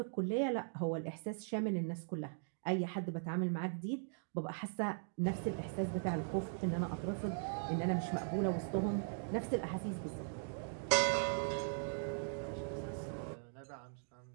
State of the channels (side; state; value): left; silent; digital silence